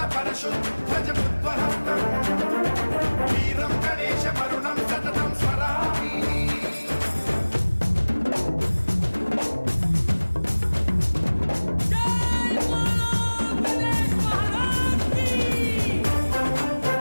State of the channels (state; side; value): inverted; both; correlation -1.00